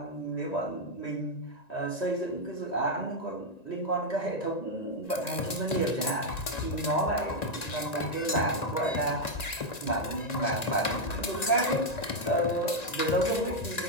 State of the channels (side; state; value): right; late; 1.9 ms